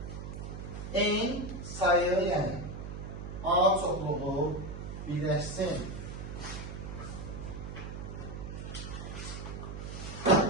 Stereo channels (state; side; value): noise; right; hum, 8 dB below the sound